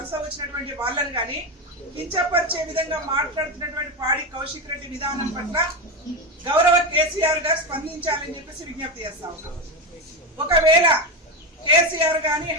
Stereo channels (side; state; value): both; normal; correlation 0.13